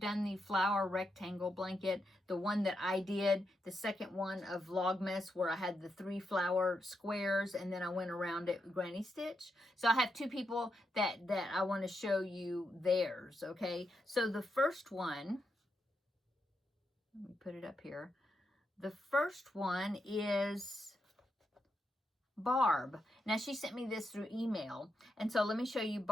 done the flower rectangle blanket. The one that I did, the second one of Vlogmas, where I had the 3 flower squares, and then I went around it with granny stitch. So I have 2 people that I want to show you theirs, okay? So the first one, let me put it up here. The first one is Barb. Now, she sent me this through email, and so let me show you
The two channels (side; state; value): both; normal; correlation 0.83